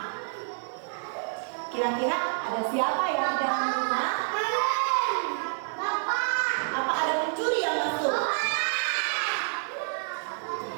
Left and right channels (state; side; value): silent; left; digital silence